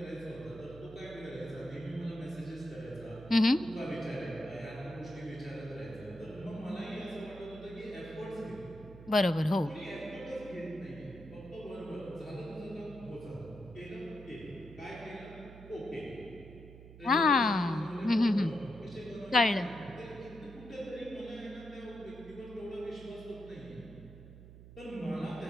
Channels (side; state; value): right; noise; hum, 16 dB below the sound